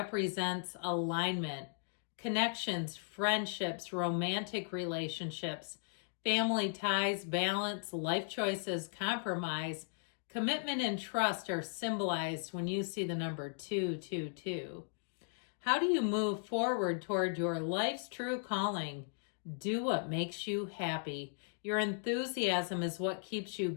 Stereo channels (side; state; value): right; silent; digital silence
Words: alignment, connections, friendships, romantic relationships, family ties, balance, life choices, compromise, commitment, and trust are symbolized when you see the number 222. How do you move forward toward your life's true calling? Do what makes you happy. Your enthusiasm is what keeps you